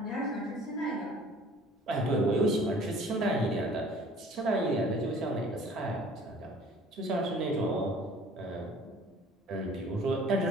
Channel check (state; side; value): normal; both; correlation 0.51